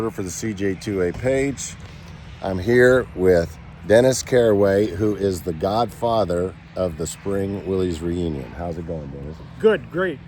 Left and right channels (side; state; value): both; identical; correlation 1.00